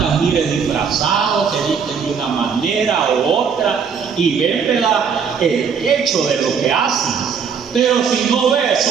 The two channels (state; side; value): quieter; left; 6.5 dB